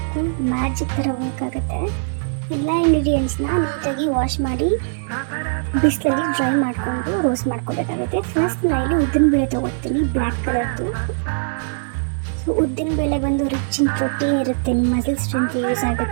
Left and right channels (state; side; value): silent; left; digital silence